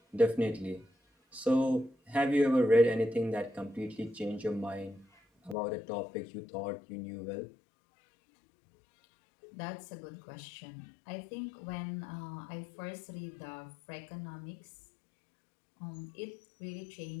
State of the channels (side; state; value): right; drops out; at 5.6 s